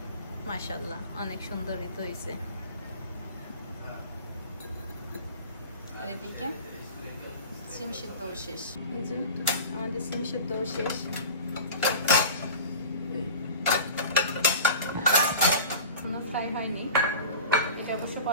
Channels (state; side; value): inverted; both; correlation -0.36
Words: মাশাআল্লাহ, অনেক সুন্দরই তো হয়েছে। আর এদিকে সিম সিদ্ধও শেষ। এই যে আমাদের সিম সিদ্ধও শেষ। কোনো ফ্রাই হয়নি, এটা অবশ্য